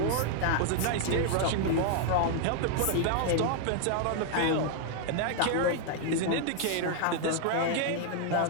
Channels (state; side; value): different; both; correlation 0.00